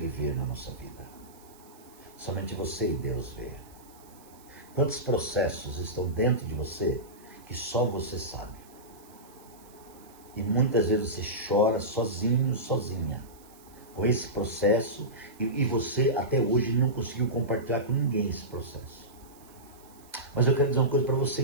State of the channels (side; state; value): right; noise; hiss, 25 dB below the sound